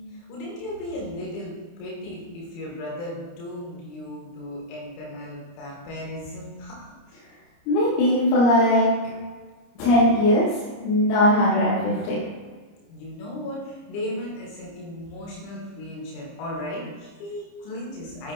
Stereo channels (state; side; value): late; right; 30 ms